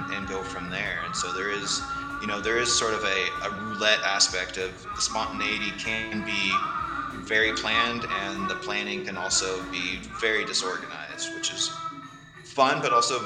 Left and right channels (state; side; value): identical; both; correlation 1.00